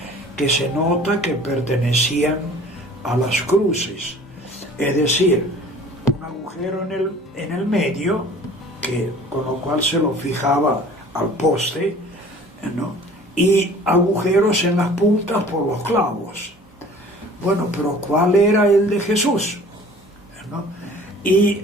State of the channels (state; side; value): normal; both; correlation 0.48